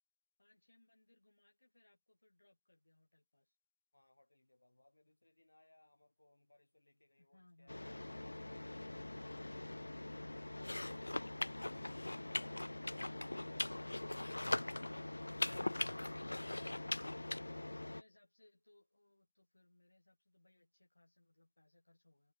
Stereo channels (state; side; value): inverted; both; correlation -1.00